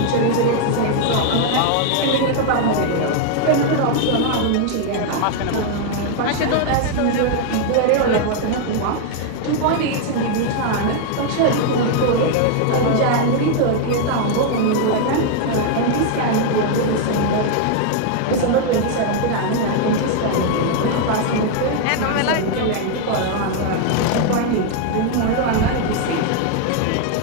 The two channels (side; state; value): both; different; correlation 0.00